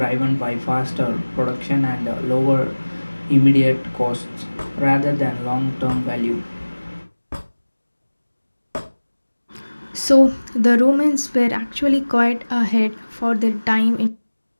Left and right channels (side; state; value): both; inverted; correlation -1.00